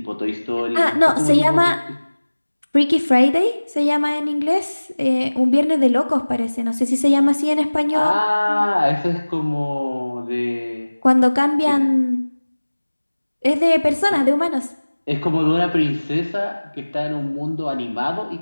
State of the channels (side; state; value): both; inverted; correlation -1.00